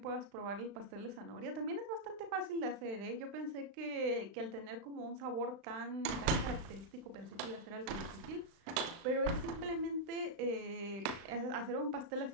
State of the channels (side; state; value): left; late; 35 ms